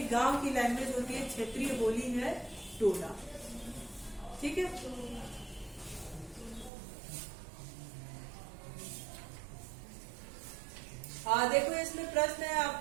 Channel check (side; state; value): left; drops out; at 6.7 s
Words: गांव की लैंग्वेज होती है, क्षेत्रीय बोली है टोला, ठीक है? हाँ देखो, इसमें प्रश्न है